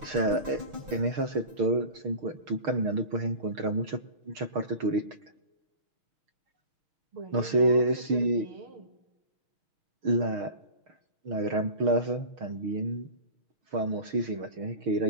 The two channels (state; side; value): late; left; 6.5 ms